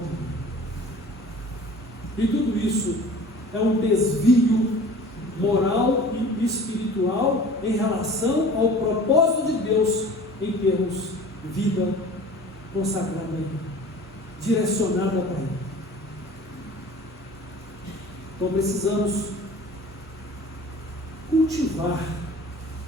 E tudo isso é um desvio moral e espiritual em relação ao propósito de Deus em termos vida consagrada a Ele, direcionada para Ele. Então precisamos cultivar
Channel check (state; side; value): normal; both; correlation 0.43